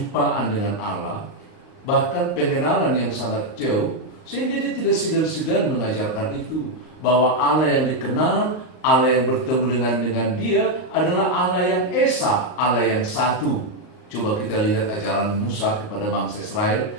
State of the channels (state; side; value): late; right; 38 ms